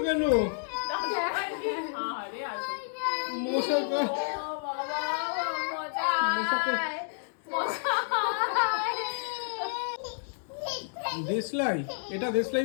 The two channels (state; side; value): silent; right; digital silence